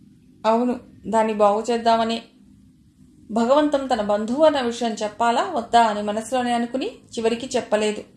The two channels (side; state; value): both; identical; correlation 1.00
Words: అవును, దాన్ని బాగు చేద్దామని. భగవంతం తన బంధువు అన్న విషయం చెప్పాలా వద్దా అని మనసులోనే అనుకుని చివరికి చెప్పలేదు.